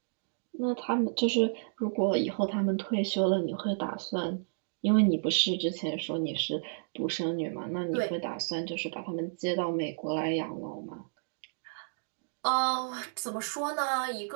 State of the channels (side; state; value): left; silent; digital silence